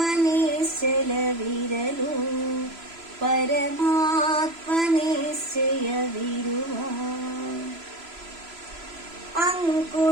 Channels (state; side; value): late; left; 3.0 ms